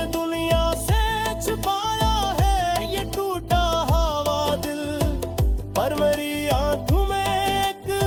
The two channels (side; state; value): both; identical; correlation 1.00